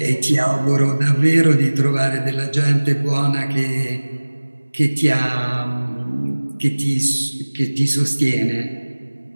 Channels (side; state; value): both; inverted; correlation -1.00